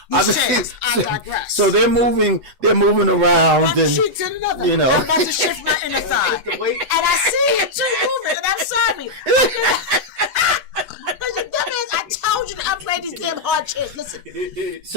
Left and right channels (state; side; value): late; left; 8.0 ms